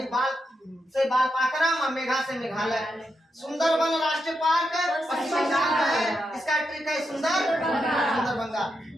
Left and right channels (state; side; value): normal; both; correlation 0.84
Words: बाल से बालपाखरम और मेघा से मेघालय। सुंदरबन राष्ट्रीय पार्क पश्चिम बंगाल में है। इसका ट्रिक है सुंदरबंगा।